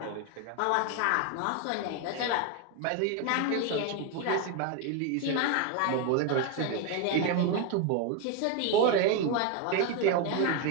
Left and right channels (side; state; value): both; different; correlation 0.01